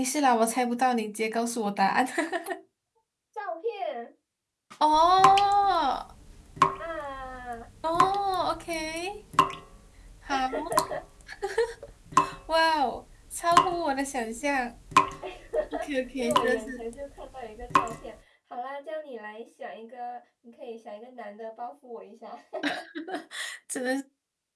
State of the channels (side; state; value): both; identical; correlation 1.00